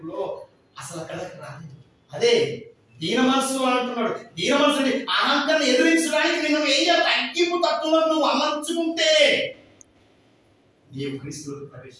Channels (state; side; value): identical; both; correlation 1.00